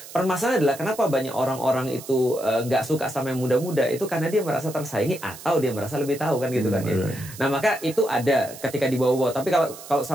Permasalahan adalah kenapa banyak orang-orang itu nggak suka sama yang muda-muda itu karena dia merasa tersaingi atau dia merasa lebih tahu kan gitu kan ya. Nah maka itu ada ketika dibawa-bawa. Tapi kalau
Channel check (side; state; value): right; noise; hiss, 15 dB below the sound